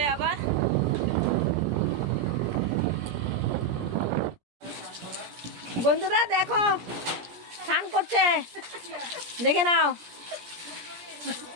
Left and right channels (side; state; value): left; late; 17 ms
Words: আবার। বন্ধুরা দেখো স্নান করছে, দেখে নাও।